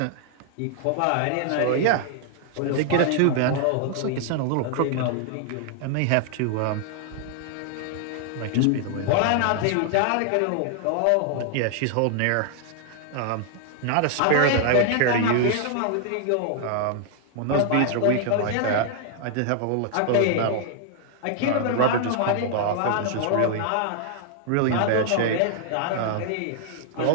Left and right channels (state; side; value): different; both; correlation 0.00